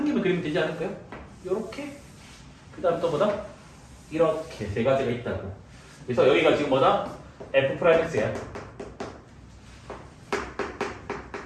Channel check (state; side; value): identical; both; correlation 1.00